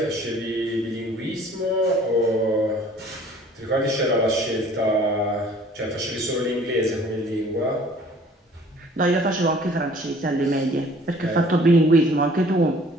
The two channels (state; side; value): normal; both; correlation 0.53